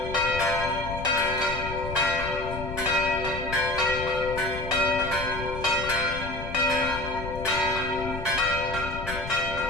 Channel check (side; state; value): left; noise; rumble, 9 dB below the sound